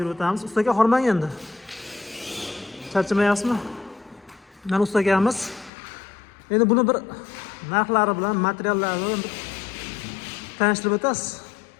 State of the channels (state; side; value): drops out; right; at 5.7 s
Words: o'tamiz. Ustaga hormang endi. Charchamayapsizmi? Mana ustagamiz. Endi buni bir narxlari bilan, materiallari bilan tanishtirib o'tasiz.